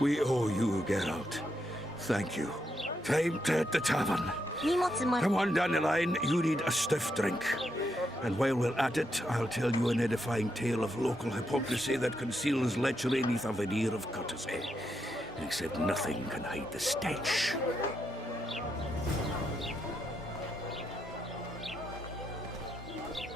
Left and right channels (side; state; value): both; normal; correlation 0.81